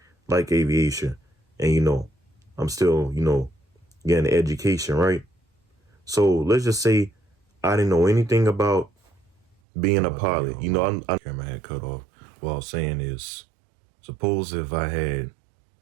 aviation, and, you know, I'm still, you know, getting education, right? So let's just say I didn't know anything about being a pilot. You know, I'm camera had cut off. What I was saying is, suppose if I had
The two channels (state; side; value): drops out; left; at 9.6 s